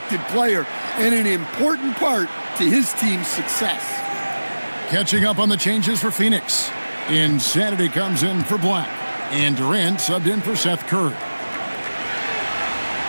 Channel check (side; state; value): both; inverted; correlation -1.00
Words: player and an important part to his team's success. Catching up on the changes for Phoenix. Insanity comes in for Black. And Durant subbed in for Seth Curry.